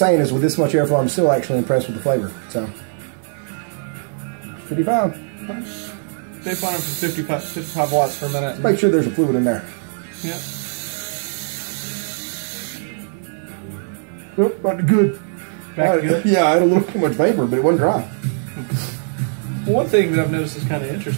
is, with this much airflow, I'm still actually impressed with the flavor. So 55. Stay flying for 55 watts for a minute. Make sure there's a fluid in there. Yep. Oh, but good. Back good. Yeah, I had a little too much vapor, but it wasn't dry. One thing that I've noticed is kind of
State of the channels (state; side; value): silent; left; digital silence